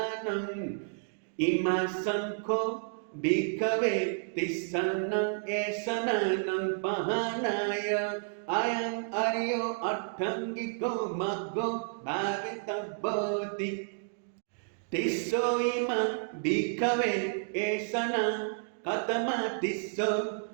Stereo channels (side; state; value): left; silent; digital silence